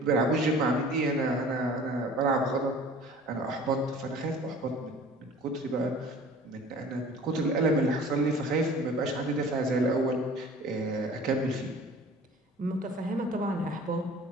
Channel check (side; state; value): both; normal; correlation 0.46